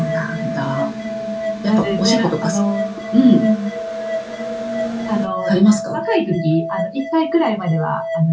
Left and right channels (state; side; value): identical; both; correlation 1.00